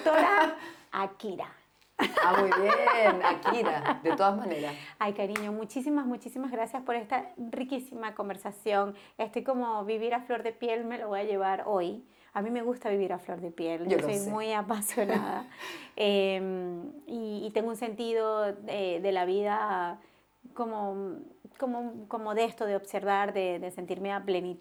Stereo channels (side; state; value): both; identical; correlation 1.00